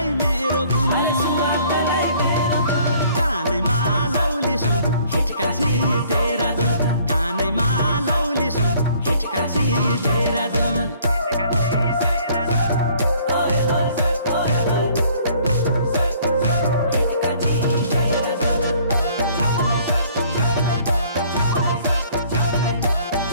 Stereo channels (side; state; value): both; inverted; correlation -0.58